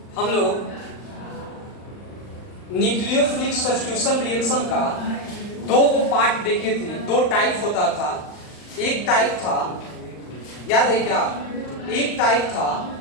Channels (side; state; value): right; late; 39 ms